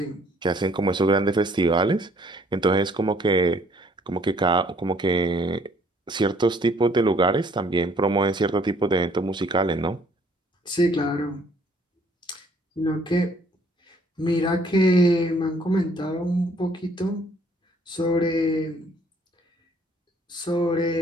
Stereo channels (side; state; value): both; normal; correlation 0.61